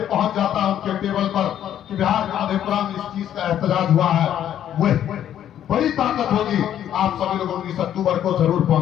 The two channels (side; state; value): right; quieter; 10.6 dB